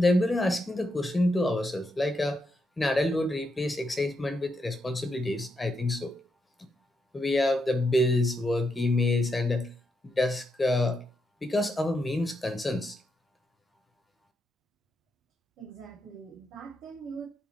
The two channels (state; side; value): normal; both; correlation 0.82